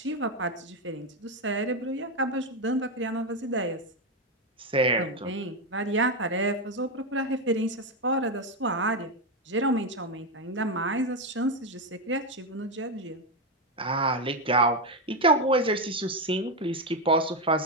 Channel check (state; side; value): normal; both; correlation 0.08